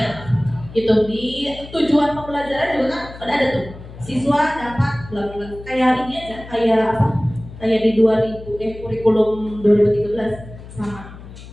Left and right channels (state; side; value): noise; left; hum, 16 dB below the sound